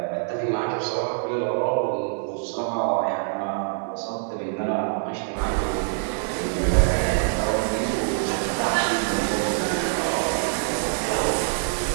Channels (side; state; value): left; silent; digital silence